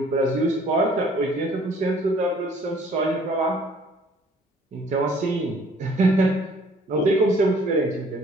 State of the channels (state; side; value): normal; both; correlation 0.57